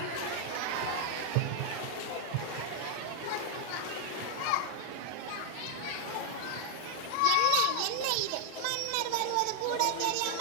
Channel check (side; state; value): both; different; correlation 0.00